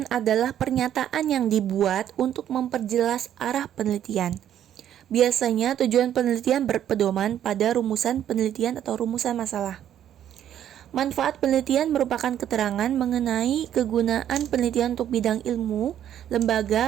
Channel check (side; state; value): left; quieter; 10.6 dB